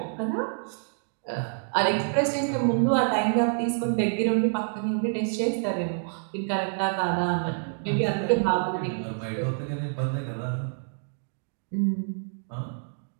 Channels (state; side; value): silent; left; digital silence